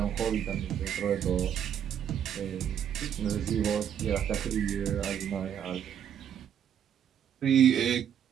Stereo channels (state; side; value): quieter; left; 9.0 dB